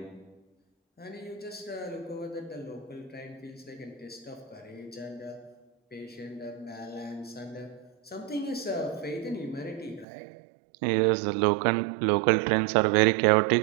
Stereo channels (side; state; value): left; drops out; at 10.1 s